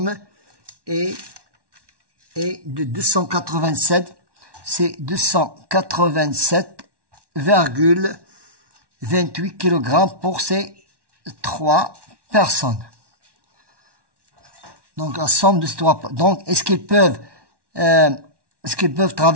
est de 287. C'est 287,28 kg pour ces 3 personnes. Donc la somme de ces 3. Donc est-ce qu'ils peuvent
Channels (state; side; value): late; left; 1.1 ms